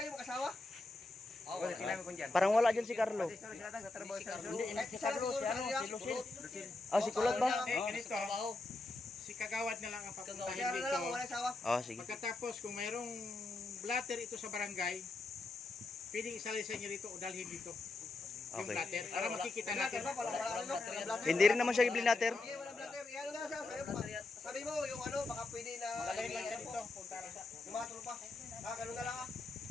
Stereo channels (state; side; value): quieter; right; 3.2 dB